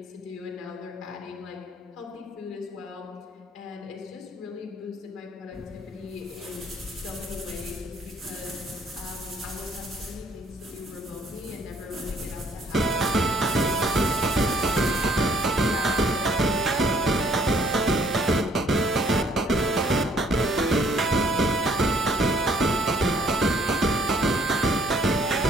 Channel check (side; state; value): both; normal; correlation 0.63